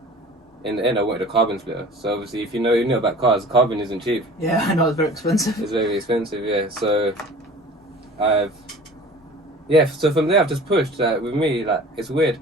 in the end I wanted a carbon splitter. So obviously, if you know about cars, carbon isn't cheap. Yeah, I know it's very expensive. It's very expensive, yeah. So so from there I've just pushed. With me, like it's weird.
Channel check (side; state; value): both; normal; correlation 0.43